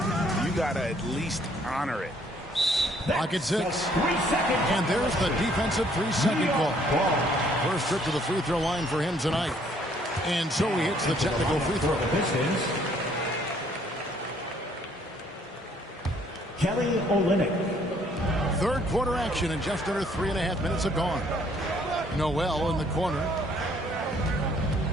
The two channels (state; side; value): normal; both; correlation 0.64